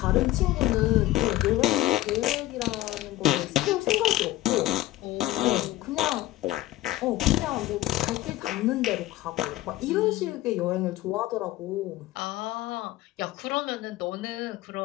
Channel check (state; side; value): quieter; right; 16.4 dB